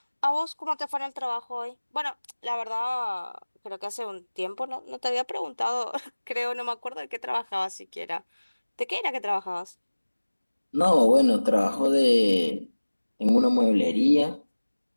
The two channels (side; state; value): both; inverted; correlation -1.00